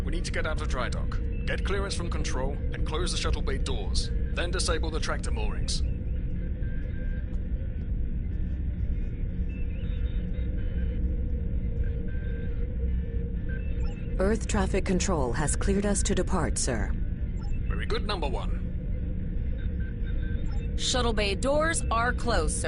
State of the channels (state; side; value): identical; both; correlation 1.00